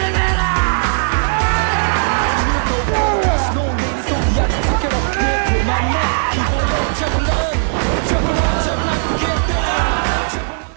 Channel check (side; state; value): left; silent; digital silence